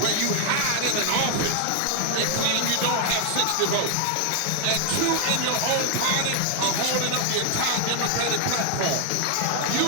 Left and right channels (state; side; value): different; both; correlation 0.00